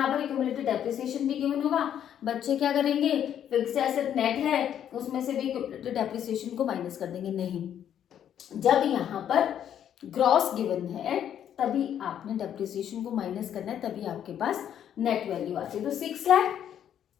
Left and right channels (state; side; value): quieter; right; 9.8 dB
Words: पर एक्यूमुलेटेड डेप्रिसिएशन भी गिवन होगा, बच्चे क्या करेंगे, फिक्स एसेट नेट है उसमें से भी एक्यूमुलेटेड डेप्रिसिएशन को माइनस कर देंगे। नहीं, जब यहाँ पर ग्रॉस गिवन है तभी आपने डेप्रिसिएशन को माइनस करना है, तभी आपके पास नेट वैल्यू आती है। तो 6 लाख